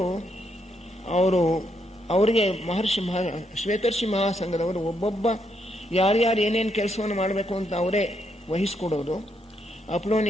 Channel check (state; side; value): normal; both; correlation 0.77